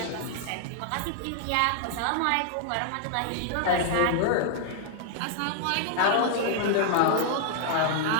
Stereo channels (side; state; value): both; different; correlation 0.00